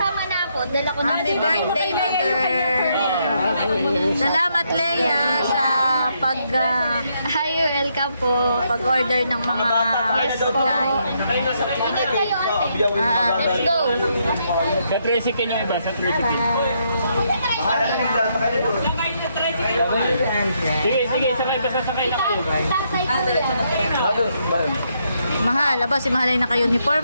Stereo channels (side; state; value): both; inverted; correlation -0.76